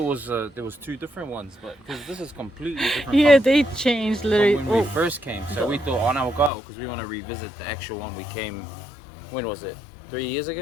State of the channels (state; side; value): drops out; right; at 6.5 s